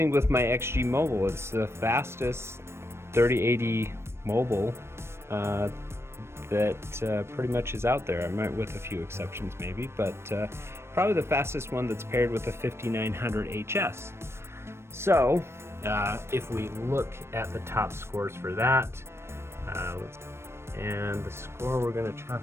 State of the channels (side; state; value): left; late; 0.12 ms